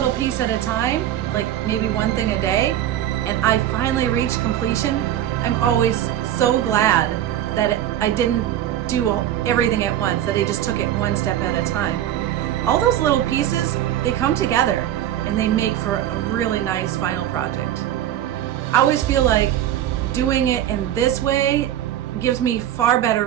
piece at a time, like maybe one thing a day, and I finally reach completion, I'm always so glad that I didn't do everything at once, that I just took it one step at a time. All those little pieces, they come together and they make for a really nice final project. I always feel like doing it in this way gives me far better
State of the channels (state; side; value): quieter; left; 11.7 dB